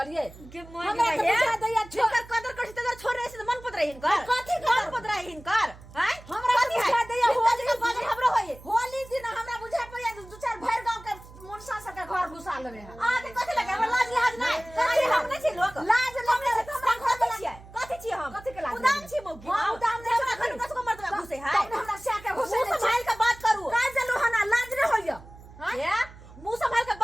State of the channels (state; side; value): noise; right; hum, 19 dB below the sound